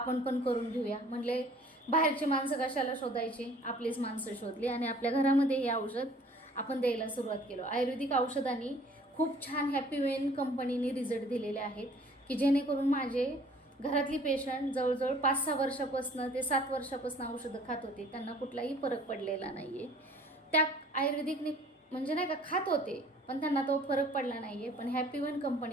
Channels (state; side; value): normal; both; correlation 0.53